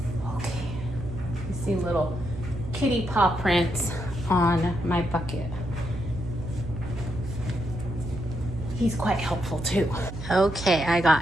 Okay. You see little kitty paw prints on my bucket. He's quite helpful too. Okay, I got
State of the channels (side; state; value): right; noise; hum, 9 dB below the sound